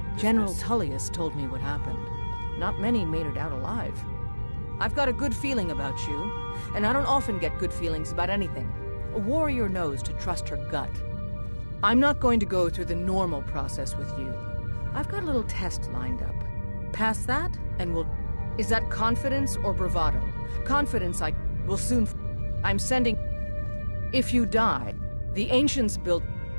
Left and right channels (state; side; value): inverted; both; correlation -1.00